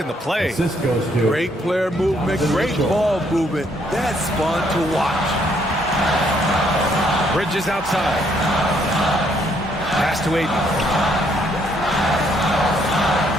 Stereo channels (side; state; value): both; normal; correlation 0.70